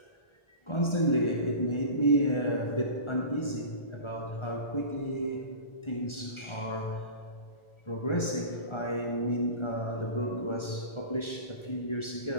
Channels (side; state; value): right; late; 1.4 ms